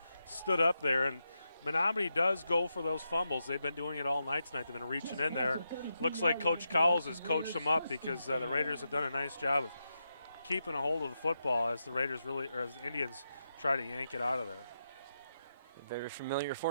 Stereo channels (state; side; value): inverted; both; correlation -0.86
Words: stood up there. And Menominee does go for those fumbles. They've been doing it all night tonight. They've been reaching in there. Looks like Coach Cowles has coached them up because the Raiders have done a nice job of keeping a hold of the football as the Indians try to yank it out of there. A very familiar